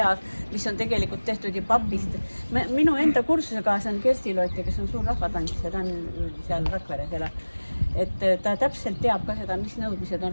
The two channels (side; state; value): both; inverted; correlation -1.00